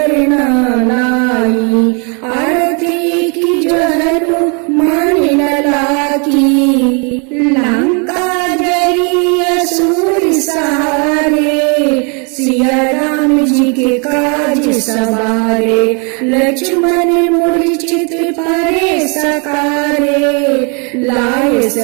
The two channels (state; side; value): quieter; left; 35.4 dB